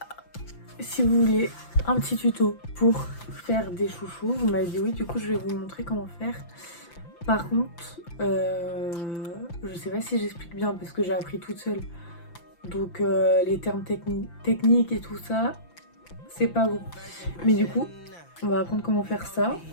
si vous voulez un petit tuto pour faire des chouchous, vous m'avez dit oui, du coup je vais vous montrer comment faire. Par contre, je sais pas si j'explique bien parce que j'ai appris toute seule. Donc les termes techniques et tout ça, c'est pas bon. Mais du coup, on va apprendre comment faire ça.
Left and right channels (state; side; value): late; right; 5.9 ms